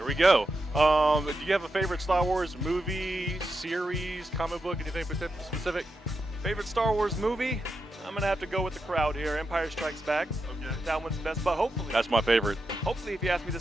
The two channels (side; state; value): both; normal; correlation 0.87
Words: we go. Do you have a favorite Star Wars movie, series, comic book, anything specific? Favorite Star Wars movie? I'm gonna have to go with the crowd here. Empire Strikes Back. Okay. That one's the best, but hopefully, That's my favorite. if you ask me